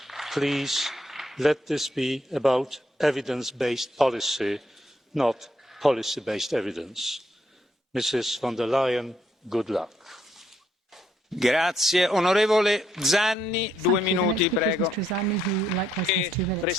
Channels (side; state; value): both; normal; correlation 0.74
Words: please let this be about evidence-based policy, not policy-based evidence. Mrs von der Leyen, good luck. Grazie. Onorevole Zanni, 2 minuti, prego.